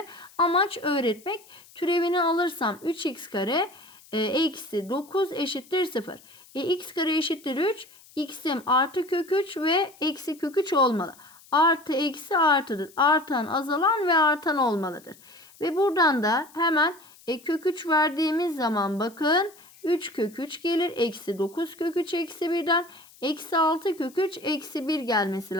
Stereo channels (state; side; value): noise; left; hiss, 25 dB below the sound